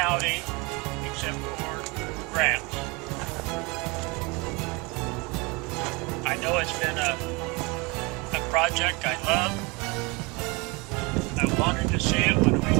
except for grants. I know it's been a project I love. I wanted to see it when we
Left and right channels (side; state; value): left; quieter; 27.2 dB